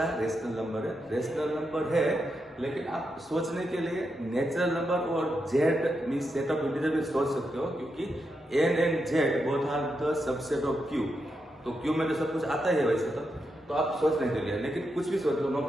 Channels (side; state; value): both; normal; correlation 0.85